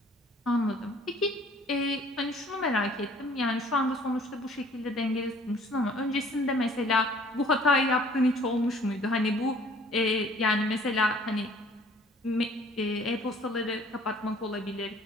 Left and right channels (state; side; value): normal; both; correlation 0.55